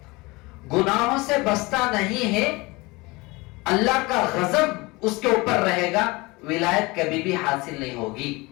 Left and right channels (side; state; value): right; quieter; 23.8 dB